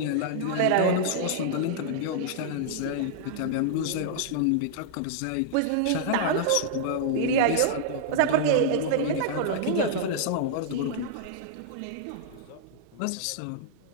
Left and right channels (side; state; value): both; different; correlation -0.01